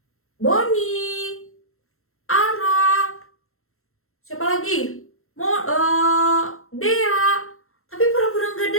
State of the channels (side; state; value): right; late; 0.62 ms